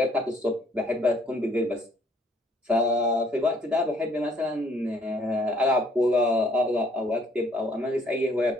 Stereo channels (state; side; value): normal; both; correlation 0.63